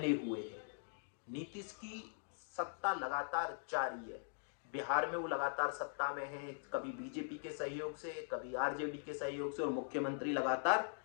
हुए हैं। नीतीश की सत्ता लगातार जारी है। बिहार में वो लगातार सत्ता में है, कभी बीजेपी के सहयोग से, कभी आरजेडी के सहयोग से, और मुख्यमंत्री लगातार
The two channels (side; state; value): right; silent; digital silence